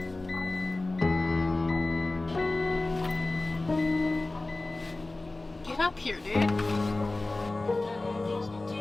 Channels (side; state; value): right; quieter; 3.0 dB